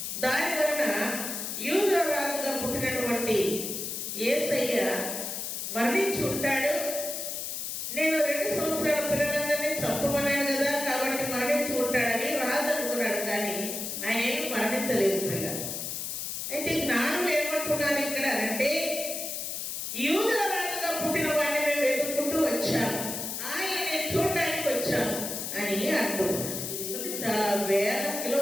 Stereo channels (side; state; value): left; noise; hiss, 4 dB below the sound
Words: దాని వలన యూదుల రాజుగా పుట్టినటువంటి యేసయ్య మరణించి ఉంటాడు. నేను 2 సంవత్సరాల పిల్లలందరినీ చంపమన్నాను కదా, కాబట్టి మరణించి ఉంటాడని రాజు అనుకున్నాడు. కానీ ఆయన ఏమి మరణించలేదు పిల్లలు. అయితే జ్ఞానులు ఏమంటున్నారు ఇక్కడ అంటే, యూదుల రాజుగా పుట్టిన వాడిని మేము వెతుక్కుంటూ వచ్చాము, ఆయన్ని చూడడానికి వచ్చాము అని అంటున్నారు. చాలా వేల